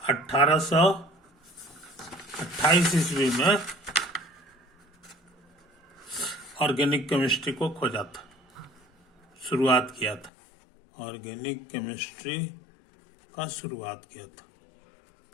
1828 ईस्वी में ऑर्गेनिक केमिस्ट्री को खोजा था, शुरुआत किया था। ऑर्गेनिक केमिस्ट्री का शुरुआत किया था,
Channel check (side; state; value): right; drops out; at 10.3 s